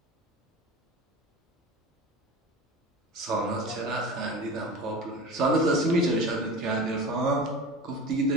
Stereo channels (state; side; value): normal; both; correlation 0.33